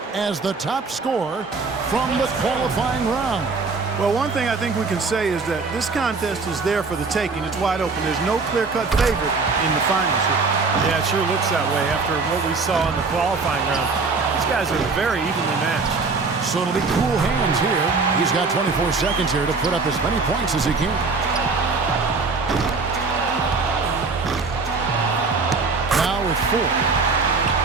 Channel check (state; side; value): quieter; left; 4.3 dB